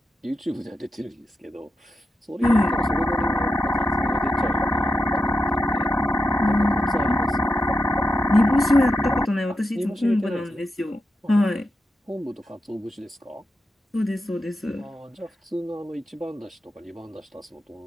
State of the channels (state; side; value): normal; both; correlation 0.87